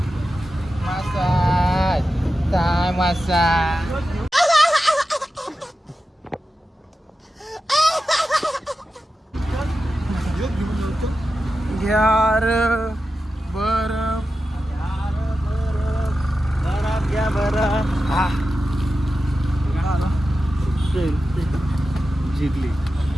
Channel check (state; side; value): normal; both; correlation 0.92